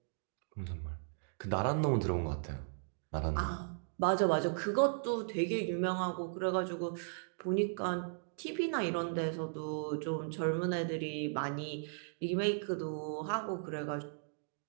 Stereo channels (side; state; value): left; silent; digital silence